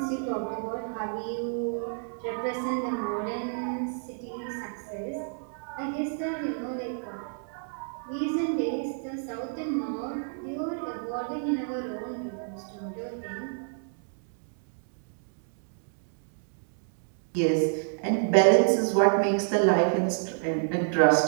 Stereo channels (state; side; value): silent; left; digital silence